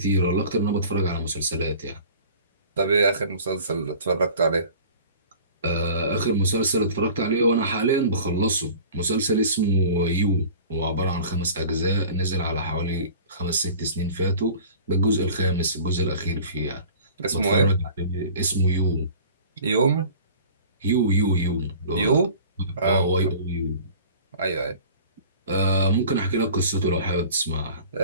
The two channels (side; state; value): both; inverted; correlation -0.44